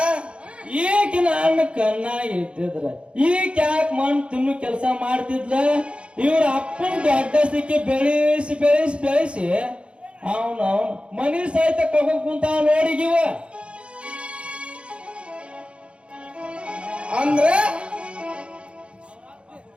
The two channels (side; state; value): left; late; 0.058 ms